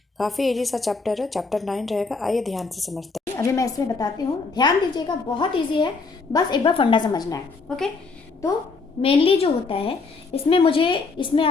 काफ़ी इजी सा चैप्टर है, चैप्टर 9 रहेगा। आइए ध्यान से समझते हैं। अभी मैं इसमें बताती हूँ, ध्यान दीजिएगा, बहुत इजी है, बस एक बार फंडा समझना है। ओके, तो मेनली जो होता है इसमें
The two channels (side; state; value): right; quieter; 4.2 dB